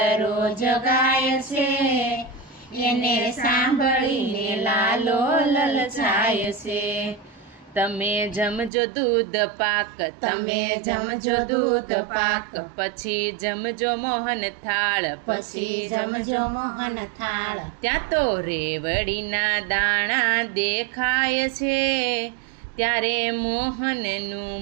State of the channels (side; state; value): left; drops out; at 8.7 s